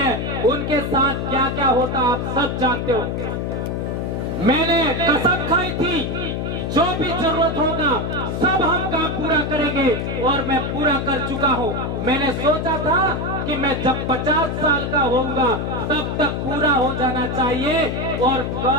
उनके साथ क्या क्या होता आप सब जानते हो। मैंने कसम खाई थी, जो भी जरूरत होगा सब हम काम पूरा करेंगे, और मैं पूरा कर चुका हूं। मैंने सोचा था कि मैं जब 50 साल का होऊंगा तब तक पूरा हो जाना चाहिए, और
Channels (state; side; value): noise; left; hum, 2 dB below the sound